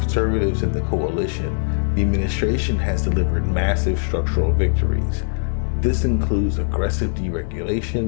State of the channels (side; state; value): right; silent; digital silence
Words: in the coalition, the administration has delivered massive structural victories. This includes aggressive